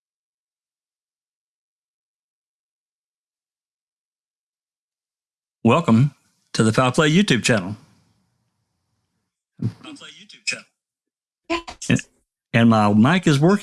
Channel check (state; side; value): identical; both; correlation 1.00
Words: Welcome to the Foul Play YouTube channel. And my mic is